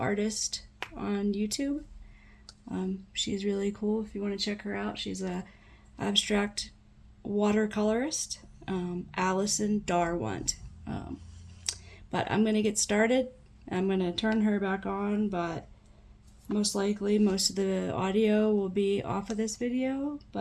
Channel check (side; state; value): both; identical; correlation 1.00